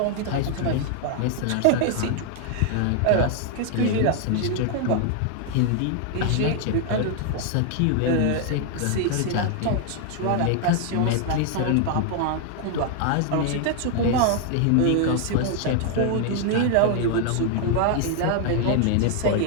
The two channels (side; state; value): both; different; correlation 0.00